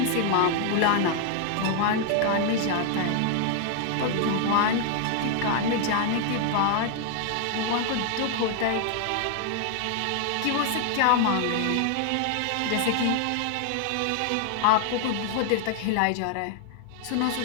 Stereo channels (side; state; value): both; different; correlation 0.00